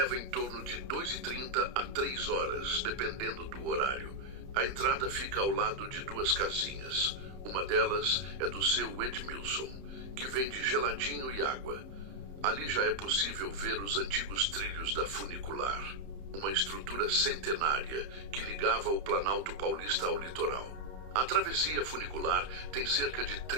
em torno de 2h30 a 3 horas, dependendo do horário. A entrada fica ao lado de duas casinhas. Uma delas é do seu Edmilson, que vende geladinho e água. Ali já é possível ver os antigos trilhos da funicular, uma estrutura centenária que ligava o Planalto Paulista ao litoral. A travessia funicular tem cerca de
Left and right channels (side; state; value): left; late; 30 ms